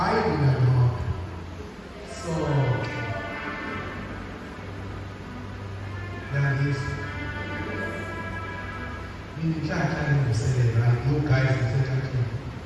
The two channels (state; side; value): identical; both; correlation 1.00